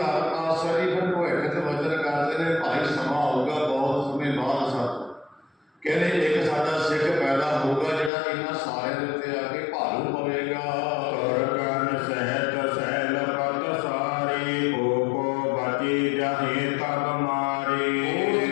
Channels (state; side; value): drops out; right; at 8.1 s